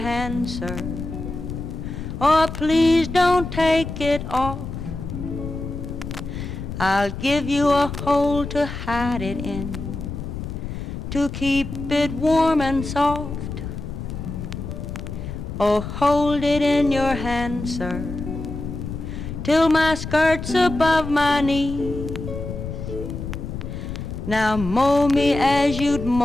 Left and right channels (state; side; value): noise; left; rumble, 7 dB below the sound